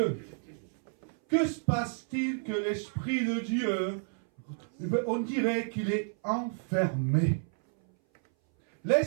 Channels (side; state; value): left; silent; 58 dB below the other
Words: que se passe-t-il que l'Esprit de Dieu, on dirait qu'il est enfermé?